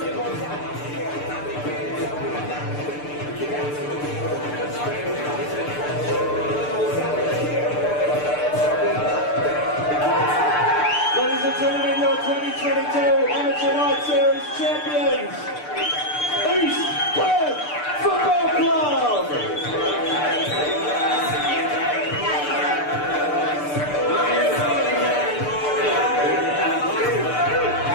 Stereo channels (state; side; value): late; right; 6.7 ms